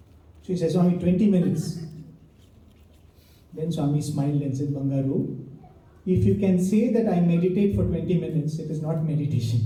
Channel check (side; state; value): both; identical; correlation 1.00